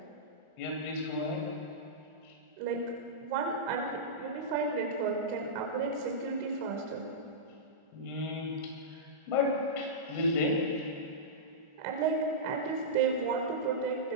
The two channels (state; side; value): late; left; 1.4 ms